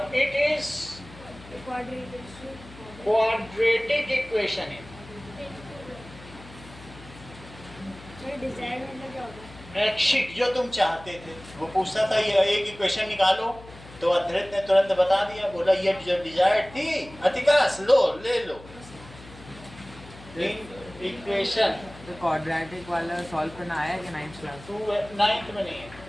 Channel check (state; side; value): noise; left; hum, 18 dB below the sound